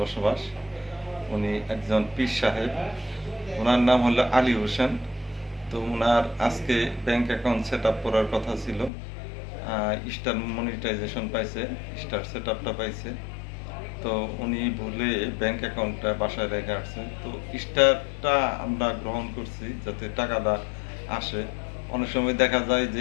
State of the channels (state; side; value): drops out; right; at 8.9 s